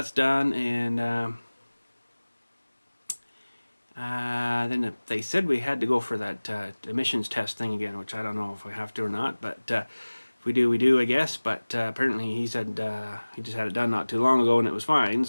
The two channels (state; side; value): inverted; both; correlation -1.00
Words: done, and then they said we had to go for that emissions test thing again, which I don't know if we have to or not, but if we do, we do, I guess. But apparently he said he just had it done not too long ago and it was fine,